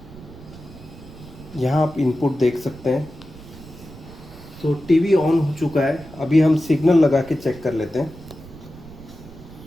यहाँ आप इनपुट देख सकते हैं। तो टीवी ऑन हो चुका है। अभी हम सिग्नल लगा के चेक कर लेते हैं।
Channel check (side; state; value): right; noise; rumble, 18 dB below the sound